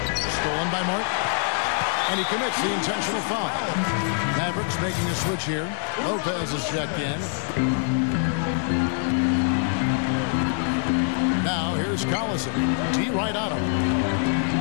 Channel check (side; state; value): right; silent; 56 dB below the other